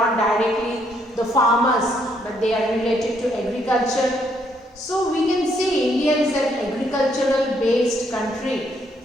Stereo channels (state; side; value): normal; both; correlation 0.71